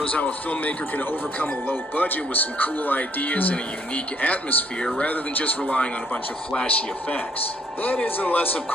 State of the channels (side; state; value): both; normal; correlation 0.67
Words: how a filmmaker can overcome a low budget with some cool ideas and a unique atmosphere rather than just relying on a bunch of flashy effects. That is unless, of